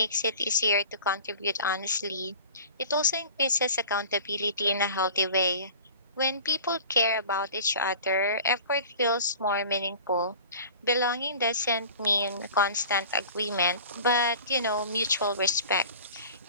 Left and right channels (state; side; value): inverted; both; correlation -0.41